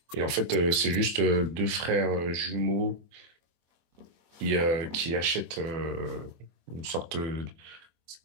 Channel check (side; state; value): left; late; 24 ms